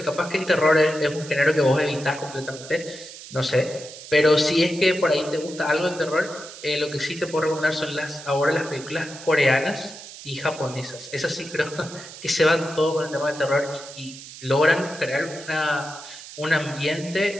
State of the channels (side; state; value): right; noise; hiss, 15 dB below the sound